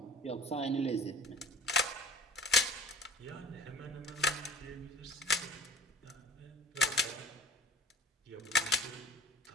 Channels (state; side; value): normal; both; correlation 0.43